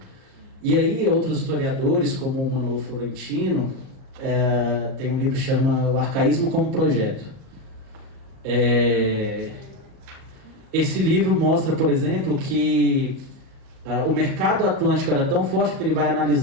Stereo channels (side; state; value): left; late; 38 ms